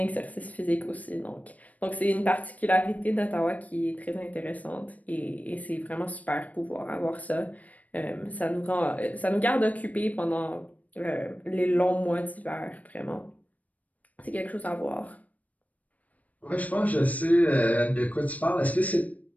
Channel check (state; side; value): late; right; 0.072 ms